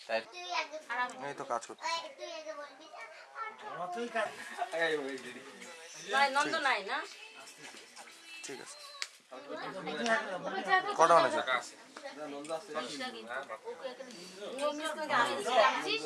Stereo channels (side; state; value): both; identical; correlation 1.00